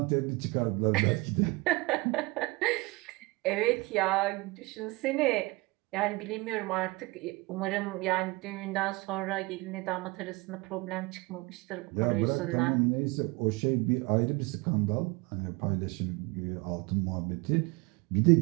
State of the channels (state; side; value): quieter; left; 24.6 dB